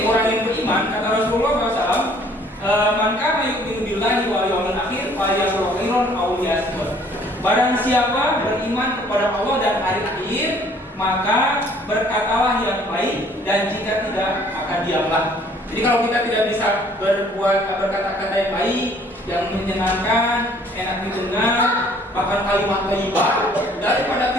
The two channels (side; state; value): both; normal; correlation 0.58